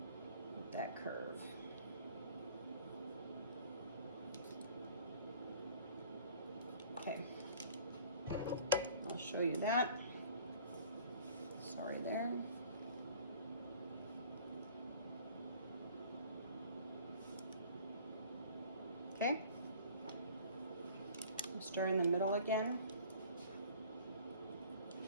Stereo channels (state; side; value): inverted; both; correlation -0.50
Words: with that curve. Okay. I'll show you that. Sorry there. Okay. I'll start in the middle again.